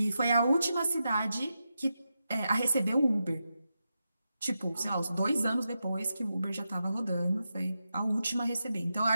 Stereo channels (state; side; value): inverted; both; correlation -0.88